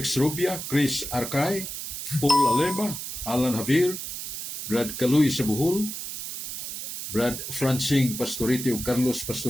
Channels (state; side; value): noise; right; hiss, 7 dB below the sound